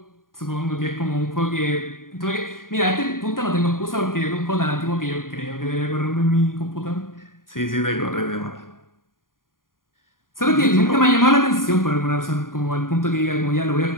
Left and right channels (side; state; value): right; late; 0.90 ms